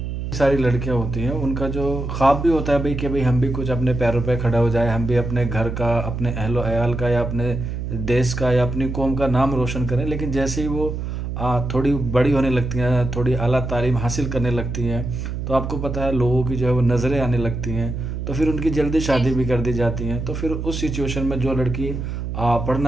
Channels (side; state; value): right; noise; hum, 4 dB below the sound